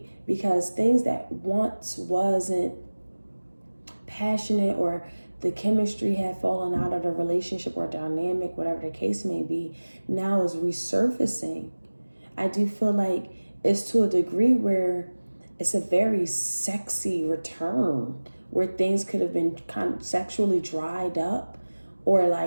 because things that once wasn't passionate or the chemistry had fallen out of the relationship or dynamic, whatever the case may be, now is resurfacing. I do feel like it's to a degree where it's a very sexy return, where things could have been kind of sexually dried up, or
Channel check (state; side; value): inverted; both; correlation -1.00